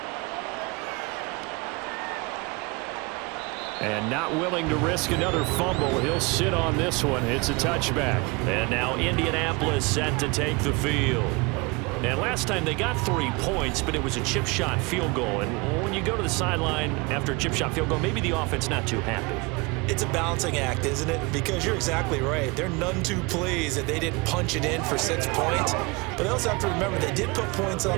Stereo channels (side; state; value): left; quieter; 27.0 dB